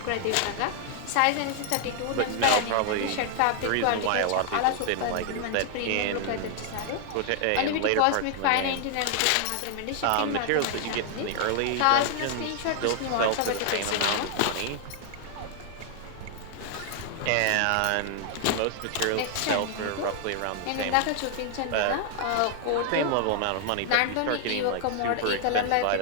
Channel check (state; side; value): different; both; correlation 0.00